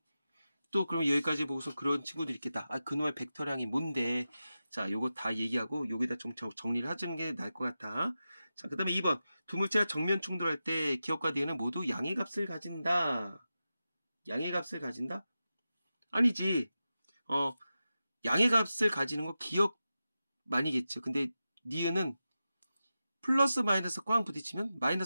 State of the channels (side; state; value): both; inverted; correlation -0.92